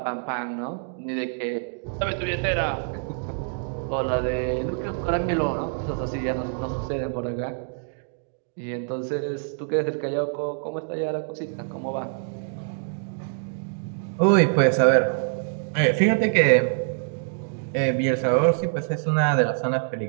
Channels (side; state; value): left; silent; digital silence